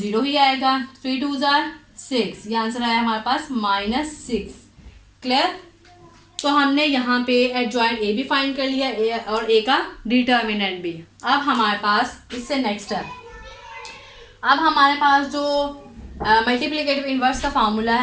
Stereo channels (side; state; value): both; identical; correlation 1.00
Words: ही आएगा। 3 2 6, ये आंसर आया हमारे पास -6। क्लियर? तो हमने यहाँ पे एडजॉइंट ए भी फाइंड कर लिया, ए और ए का डिटर्मिनेंट भी। अब हमारे पास इससे नेक्स्ट है, अब हमारे पास जो मल्टीप्लिकेटिव इनवर्स का फार्मूला